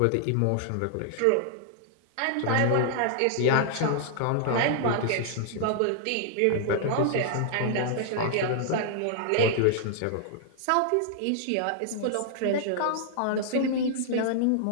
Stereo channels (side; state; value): both; different; correlation -0.01